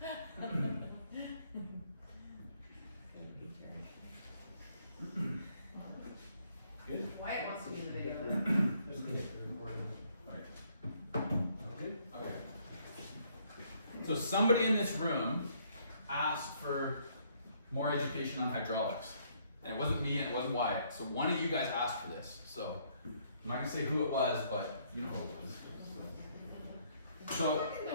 Good. Wyatt wants to be in the video. Just get the recording. Right. Okay. Okay. So somebody in this room asked for more education on hydraulics. And it wasn't me and it wasn't Wyatt. So one of you guys asked for this. So I'm not going to say who it was, but you know who it was. So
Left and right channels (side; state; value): both; inverted; correlation -0.67